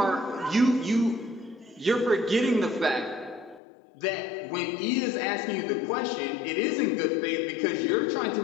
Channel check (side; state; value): right; drops out; at 3.6 s